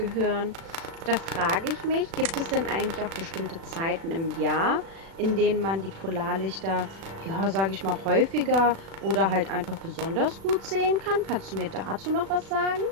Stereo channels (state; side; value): late; left; 36 ms